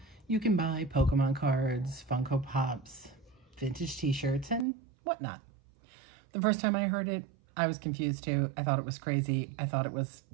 you can buy Pokemon cards, Funko Pops, vintage t-shirts, and whatnot. The first time I heard it, I was confused too. I thought it was crazy. I thought it was,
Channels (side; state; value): left; drops out; at 4.7 s